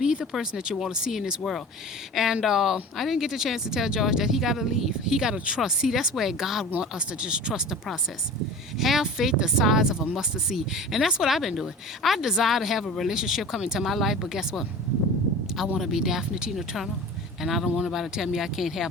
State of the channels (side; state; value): both; normal; correlation 0.36